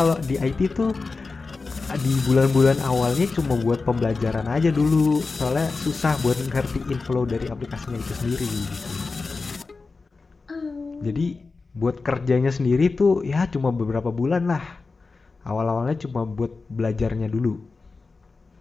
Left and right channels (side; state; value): right; quieter; 4.1 dB